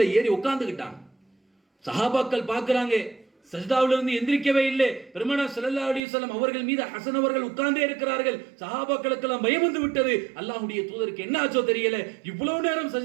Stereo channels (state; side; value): drops out; left; at 6.0 s